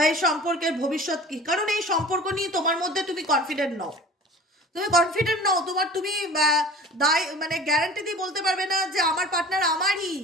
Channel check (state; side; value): normal; both; correlation 0.41